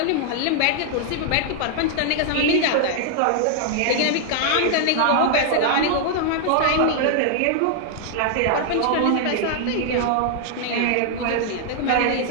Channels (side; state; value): both; different; correlation 0.00